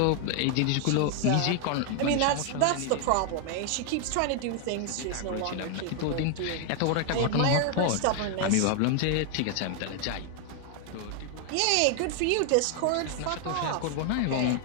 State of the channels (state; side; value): different; both; correlation 0.00